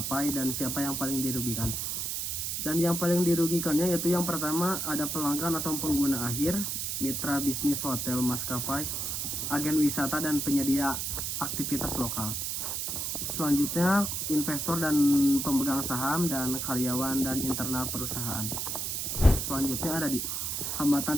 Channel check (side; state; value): right; noise; hiss, 2 dB below the sound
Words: dan siapa yang paling dirugikan. Dan yang paling dirugikannya yaitu yang pertama ada pelanggan atau pengguna akhir, mitra bisnis hotel, maskapai, agen wisata, dan penyedia aktivitas lokal. Selanjutnya investor dan pemegang saham, dan karyawan dan internal perusahaan. Selanjutnya ada di hambatan